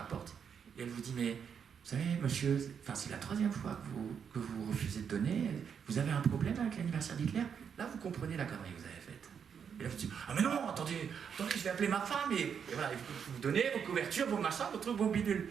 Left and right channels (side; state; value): left; quieter; 7.2 dB